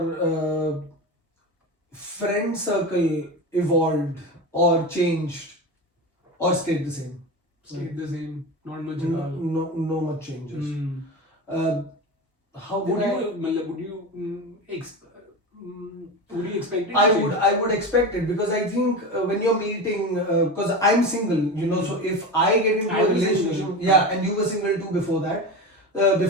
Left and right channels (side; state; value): both; normal; correlation 0.24